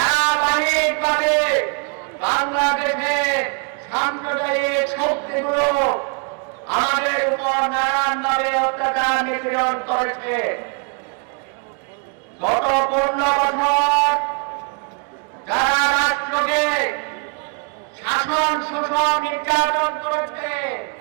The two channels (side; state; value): left; quieter; 36.6 dB